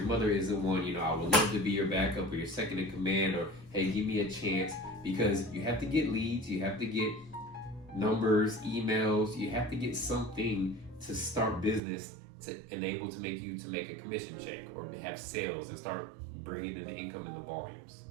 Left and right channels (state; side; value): drops out; left; at 11.8 s